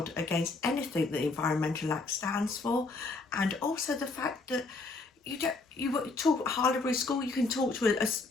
against anything that the Environmental Act stands for, and also the fact that you talk at Harlowberry School, you can talk to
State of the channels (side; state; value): right; quieter; 3.6 dB